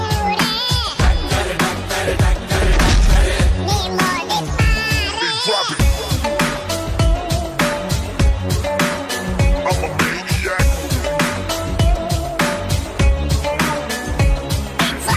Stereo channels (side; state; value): both; identical; correlation 1.00